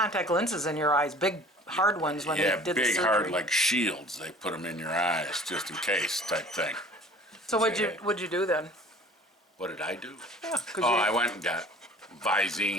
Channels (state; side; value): normal; both; correlation 0.47